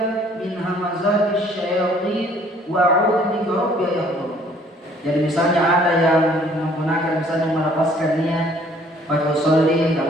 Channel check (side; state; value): both; normal; correlation 0.59